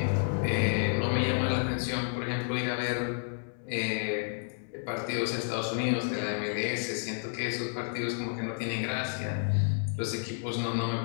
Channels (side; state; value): right; silent; digital silence